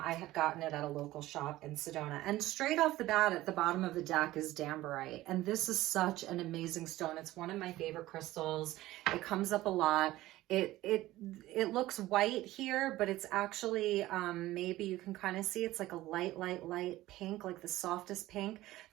had gotten it at a local shop in Sedona. And straight off the bat, at the bottom of the deck is Dambarite. And this is such an amazing stone. It's one of my favorite crystals. It comes up a lot. It looks white here, but it's actually, maybe you can kind of see it's like a light pink, like the softest pink.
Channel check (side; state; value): left; quieter; 16.5 dB